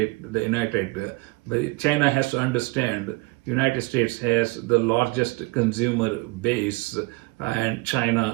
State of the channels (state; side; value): quieter; left; 24.9 dB